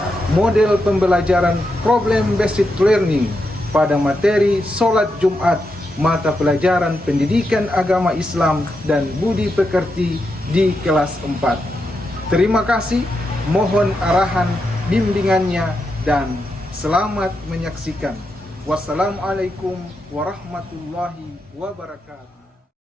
model pembelajaran problem based learning pada materi Sholat Jumat, mata pelajaran pendidikan agama Islam dan budi pekerti di kelas 4. Terima kasih, mohon arahan bimbingannya dan selamat menyaksikan. Wassalamualaikum warahmatullahi wabarakatuh.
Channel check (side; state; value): both; normal; correlation 0.85